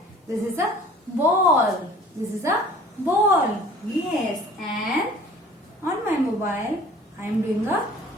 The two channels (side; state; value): both; normal; correlation 0.49